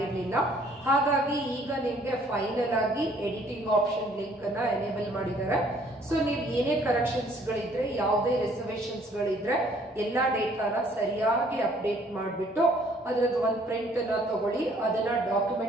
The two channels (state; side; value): normal; both; correlation 0.61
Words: ಹಾಗಾಗಿ ಈಗ ನಿಮ್ಗೆ ಫೈನಲ್ ಆಗಿ ಎಡಿಟಿಂಗ್ ಆಪ್ಷನ್ ಲಿಂಕ್ ಅನ್ನ ಎನೇಬಲ್ ಮಾಡಿದ್ದಾರೆ. ಸೊ ನೀವು ಏನೇ ಕರೆಕ್ಷನ್ಸ್ ಗಳಿದ್ರೆ, ಯಾವುದೇ ರಿಸರ್ವೇಶನ್ಸ್ ಗಳಿದ್ರೆ ಎಲ್ಲಾ ಡೇಟಾನ ಸರಿಯಾಗಿ ಅಪ್ಡೇಟ್ ಮಾಡಿಬಿಟ್ಟು ಅದರದ್ದು ಒಂದು ಪ್ರಿಂಟ್ ಅನ್ನ ತಗೊಳ್ಳಿ. ಅದನ್ನ